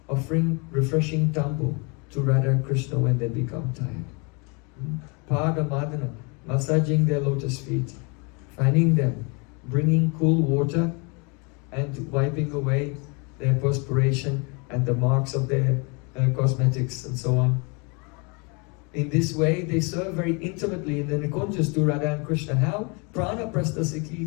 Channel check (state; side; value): quieter; right; 32.1 dB